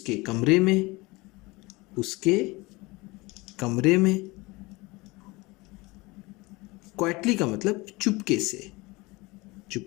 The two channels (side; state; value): right; quieter; 23.4 dB